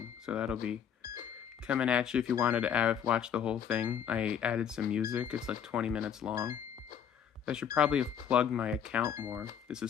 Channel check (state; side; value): quieter; right; 8.3 dB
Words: So that'll be coming at you if you wanted to watch the whole thing. I added some music. It's like 20 minutes long. I should probably have plugged my account more. This